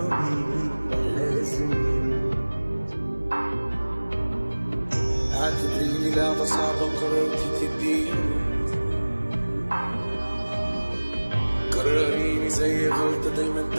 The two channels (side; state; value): both; inverted; correlation -1.00